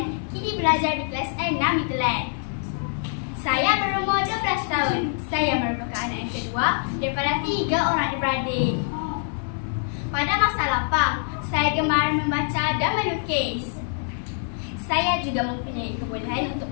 kini belajar di kelas 6 Mitteland. Saya berumur 12 tahun. Saya merupakan anak yang kedua daripada 3 orang adik-beradik. Pada masa lapang, saya gemar membaca dan melukis. Saya juga mempunyai kebolehan untuk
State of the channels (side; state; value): right; silent; 62 dB below the other